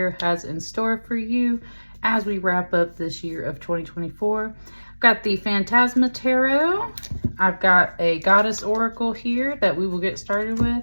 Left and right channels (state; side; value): inverted; both; correlation -1.00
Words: has in store for you as we wrap up this year of 2024. I've got the Phantasma Tarot. I've got a Goddess Oracle here that we will get started with.